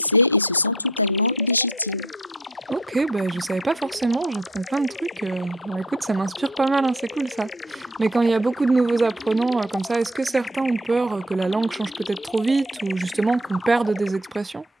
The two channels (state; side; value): normal; both; correlation 0.53